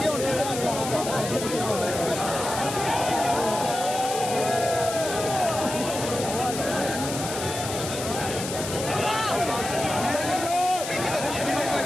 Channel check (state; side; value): noise; left; hiss, 7 dB below the sound